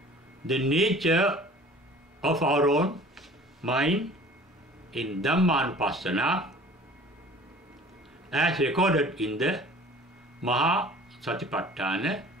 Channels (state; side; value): normal; both; correlation 0.47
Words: the nature of our own mind in Dhammanupassana as recorded in the Maha Satipatthana